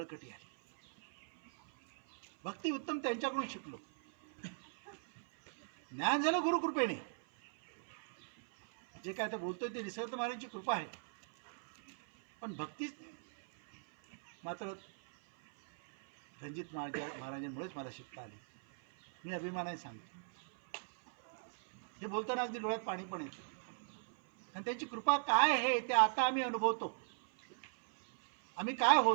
आली. भक्ती उत्तम त्यांच्याकडून शिकलो. ज्ञान झालं गुरुकृपेने. जे काय आता बोलतोय ते निसर्गदत्त महाराजांची कृपा आहे, पण भक्ती मात्र रणजित महाराजांमुळेच मला शिकता आली. मी अभिमानाने सांगतो. हे बोलताना अगदी डोळ्यात पाणी पण येतं, कारण त्यांची कृपा काय आहे ते आता आम्ही अनुभवतो. आम्ही काय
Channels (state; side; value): silent; left; 52 dB below the other